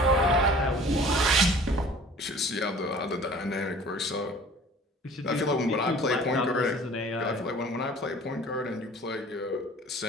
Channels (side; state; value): both; normal; correlation 0.48